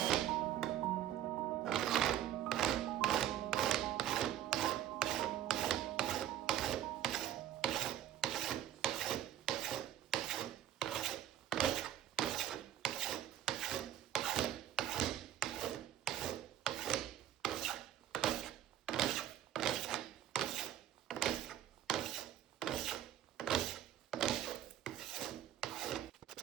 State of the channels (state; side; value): quieter; left; 11.7 dB